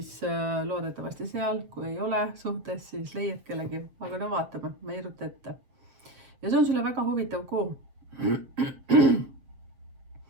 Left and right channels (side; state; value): left; late; 7.6 ms